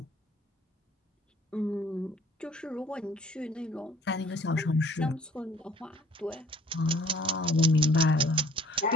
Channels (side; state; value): both; normal; correlation 0.55